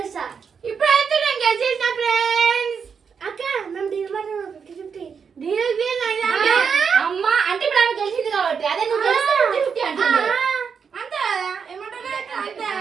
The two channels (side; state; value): left; quieter; 6.3 dB